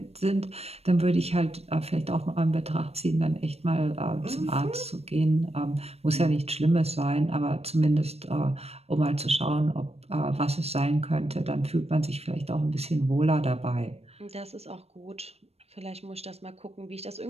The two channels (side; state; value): left; late; 0.30 ms